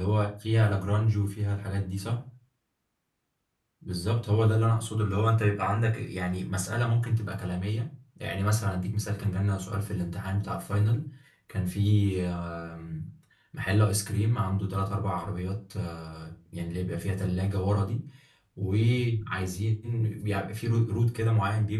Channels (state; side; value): identical; both; correlation 1.00